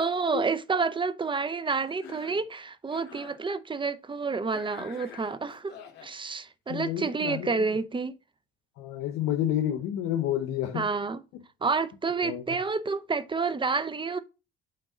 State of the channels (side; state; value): both; normal; correlation 0.31